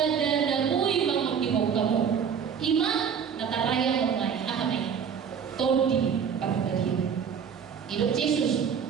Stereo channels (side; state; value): left; quieter; 7.3 dB